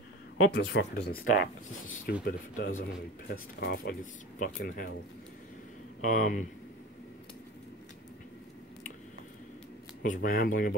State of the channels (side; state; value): both; normal; correlation 0.34